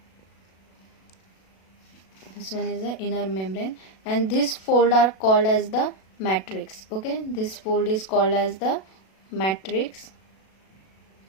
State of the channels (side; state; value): right; late; 37 ms